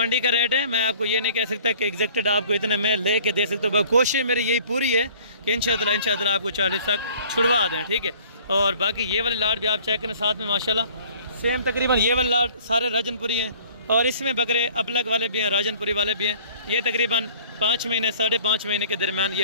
का रेट है, मैं आपको ये नहीं कह सकता कि एग्जैक्टेड आपको इतने में ले के दे सकता हूँ। कोशिश मेरी यही पूरी है कि इंशाअल्लाह आपको 40 तक छुड़वा दें, ठीक है। और बाकी ये वाली लाट भी आप चेक करें साथ में माशाल्लाह सेम तकरीबन ये वाली लाट सारे राजनपुरी हैं और इसमें बकरे अबलग वाले भी हैं, राजनपुरी वाले भी हैं। ये तकरीबन 5 महीने 5.5 महीने के दरमियान ये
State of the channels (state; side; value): inverted; both; correlation -0.51